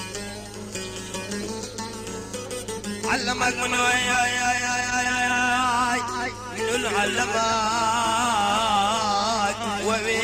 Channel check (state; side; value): identical; both; correlation 1.00